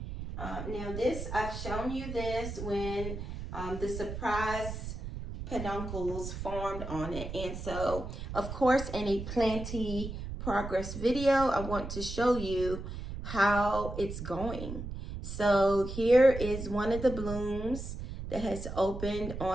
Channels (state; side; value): noise; right; rumble, 7 dB below the sound